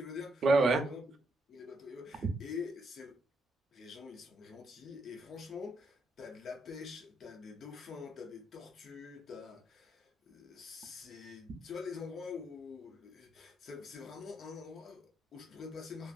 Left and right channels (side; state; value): both; normal; correlation 0.78